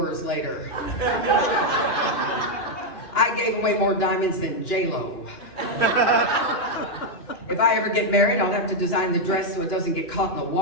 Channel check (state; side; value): late; right; 2.4 ms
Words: later. I gave away more diamonds than J-Lo. If I ever get married, I'll have to design the dress so it doesn't get caught in the